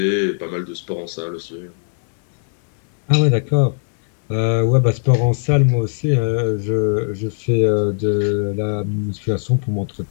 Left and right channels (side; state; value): right; silent; 67 dB below the other